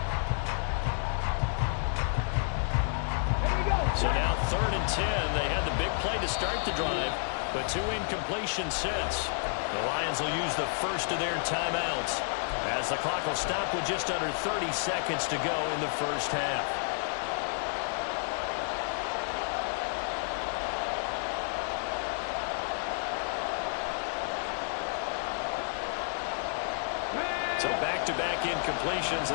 So now 3rd and 10. They had the big play to start the drive, but 2 incompletions since. The Lions will use the first of their timeouts as the clock will stop with just under 30 seconds to go in the first half. So back-to-back incompletions,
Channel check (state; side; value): silent; right; digital silence